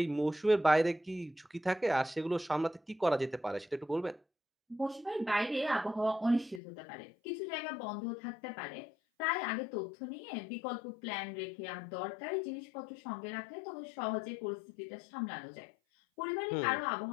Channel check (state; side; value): drops out; right; at 6.6 s